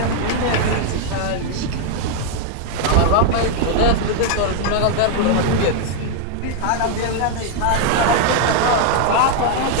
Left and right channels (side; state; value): both; different; correlation 0.00